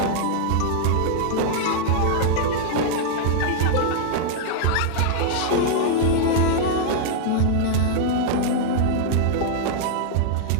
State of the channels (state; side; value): different; both; correlation -0.01